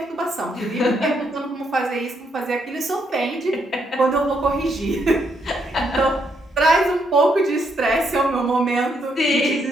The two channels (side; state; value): both; normal; correlation 0.75